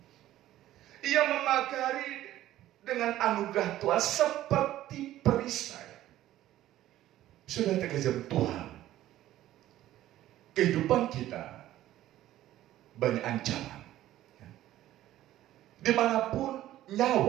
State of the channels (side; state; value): left; quieter; 14.0 dB